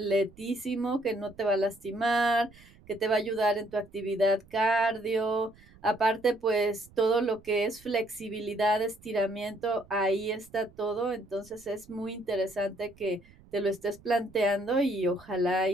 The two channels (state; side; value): noise; right; rumble, 25 dB below the sound